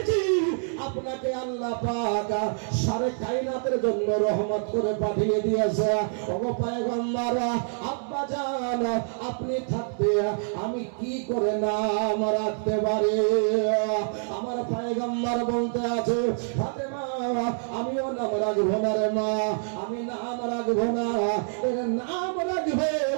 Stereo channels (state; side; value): silent; left; 61 dB below the other